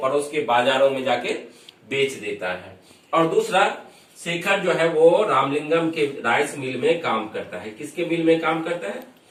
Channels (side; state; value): both; identical; correlation 1.00